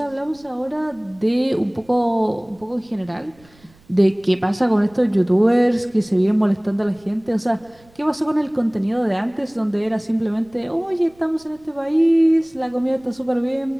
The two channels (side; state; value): right; noise; rumble, 29 dB below the sound